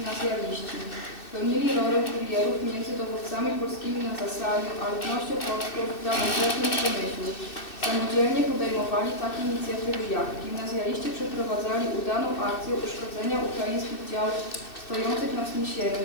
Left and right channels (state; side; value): late; right; 2.6 ms